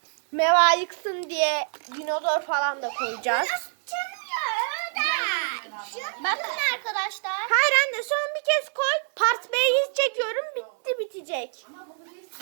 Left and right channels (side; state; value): left; silent; digital silence